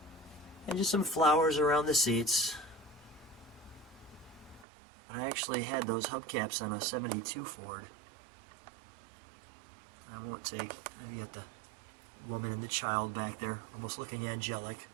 And just some flowers around the seats. But I actually had those hubcaps on a 72 Ford. I won't take... You got the woman and the child back there, almost looking angelic.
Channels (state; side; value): drops out; left; at 4.7 s